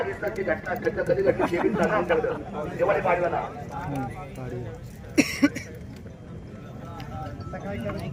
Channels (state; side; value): identical; both; correlation 1.00